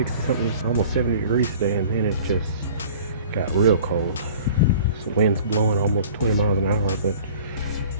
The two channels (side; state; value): both; inverted; correlation -0.46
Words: something, almost 70 degrees today, and then it just got real cold. So wind's blowing almost 20 miles an hour, but